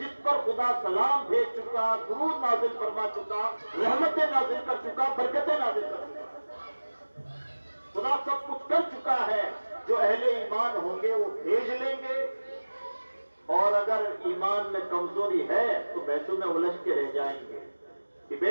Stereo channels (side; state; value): both; inverted; correlation -1.00